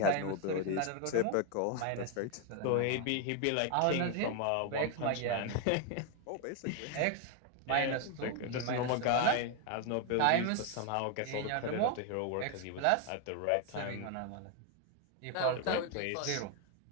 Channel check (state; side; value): different; both; correlation 0.01